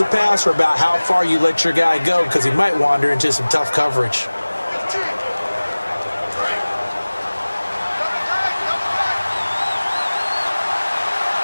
passer about how far you let your guy go because he might wander into some tough coverage.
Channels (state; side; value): inverted; both; correlation -1.00